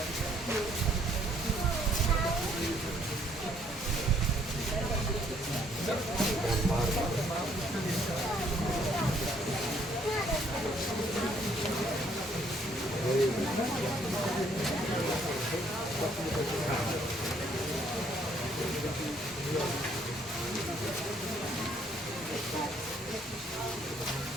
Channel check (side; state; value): both; normal; correlation 0.66